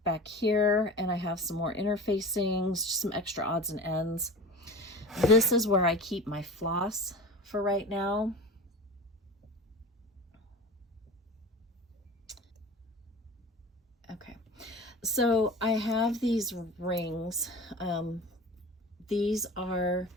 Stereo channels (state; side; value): normal; both; correlation 0.35